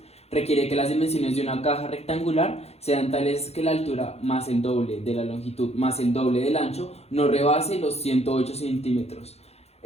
requiere que las dimensiones de una caja rectangular sean tales que la altura más el doble de la longitud más el doble del ancho no rebase los 108 centímetros.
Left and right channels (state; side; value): late; right; 0.30 ms